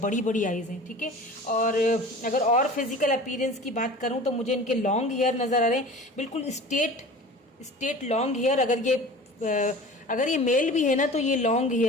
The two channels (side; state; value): both; normal; correlation 0.39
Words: बड़ी आईज हैं, ठीक है। और अगर और फिजिकल अपीयरेंस की बात करूँ तो मुझे इनके लॉन्ग हेयर नजर आ रहे हैं, बिल्कुल स्ट्रेट लॉन्ग हेयर। अगर ये मेल भी है ना, तो ये लॉन्ग